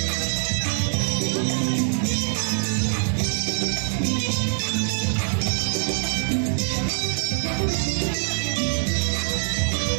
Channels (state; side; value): silent; left; 63 dB below the other